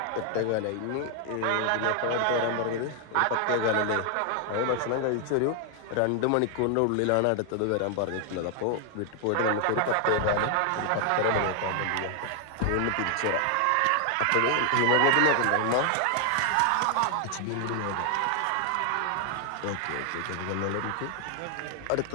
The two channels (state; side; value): different; both; correlation 0.00